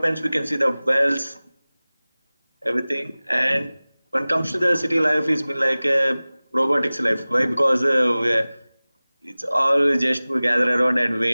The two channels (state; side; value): inverted; both; correlation -0.99